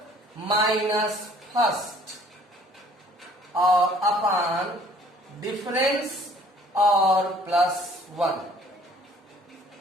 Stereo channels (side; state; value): both; normal; correlation 0.56